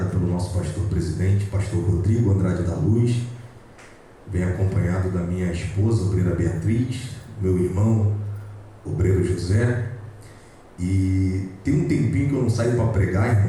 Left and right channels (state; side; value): identical; both; correlation 1.00